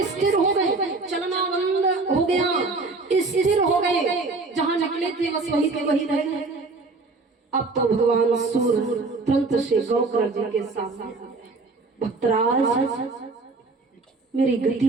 स्थिर हो गए, चलना बंद हो गया, स्थिर हो गए, जहां निकले थे बस वहीं के वहीं रह गए। अब तो भगवान सूर्य तुरंत से गौकर्ण जी के सामने, भक्तराज मेरी गति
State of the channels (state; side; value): quieter; left; 3.7 dB